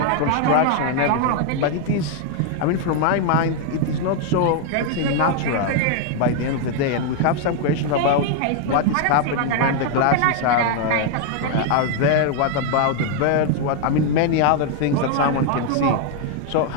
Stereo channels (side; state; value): both; different; correlation 0.00